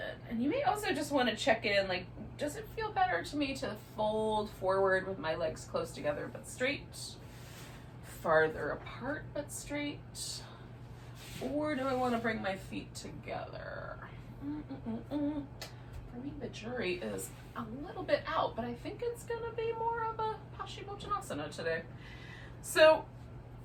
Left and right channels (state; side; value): identical; both; correlation 1.00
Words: And you may also just want to check in, like, does it feel better to me to fold forward with my legs close together but straight? Farther apart but straight? Or do I want to bring my feet together? For me, the jury is a little bit out, but I think it's going to be more of a Paschimottanasana today. So